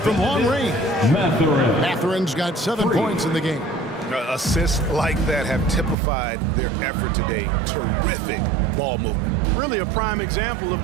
long range. Mathurin's got 7 points in the game. Assists like that have typified their effort today. Terrific ball movement. Really a prime example of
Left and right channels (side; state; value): left; drops out; at 6.0 s